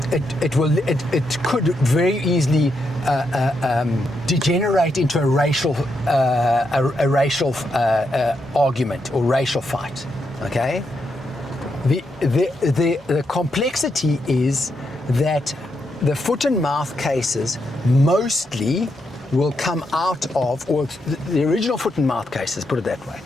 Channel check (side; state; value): both; normal; correlation 0.82